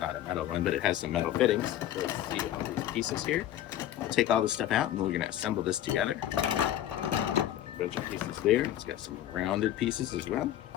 a metal one, but it has some metal fittings. So let's see all these pieces here. We'll take all this stuff out and we're going to assemble this together. A bunch of pieces there. It's got some rounded pieces as well.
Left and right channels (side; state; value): right; quieter; 12.2 dB